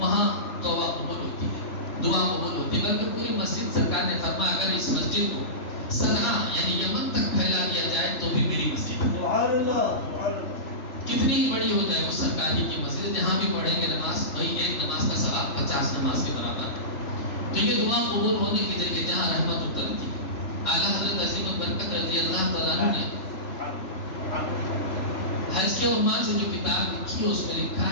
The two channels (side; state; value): right; late; 3.4 ms